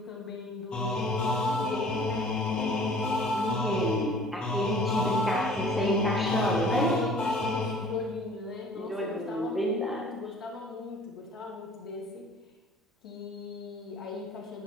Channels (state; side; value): normal; both; correlation 0.50